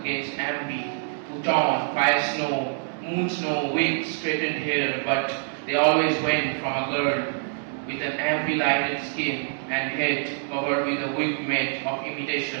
Ambi, who torn fire snow, moon snow, wigs, straightened hair, but they always went from a girl with an Ambi-lighted skin and head covered with a wig made of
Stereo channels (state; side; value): silent; left; 61 dB below the other